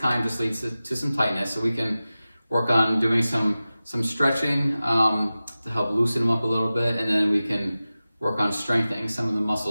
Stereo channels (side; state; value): both; inverted; correlation -0.96